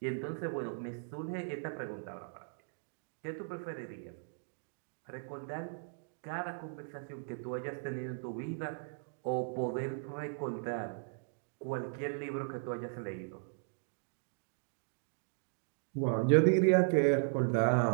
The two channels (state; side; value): silent; left; digital silence